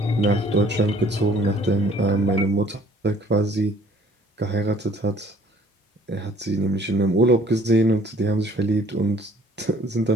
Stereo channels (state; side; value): normal; both; correlation 0.58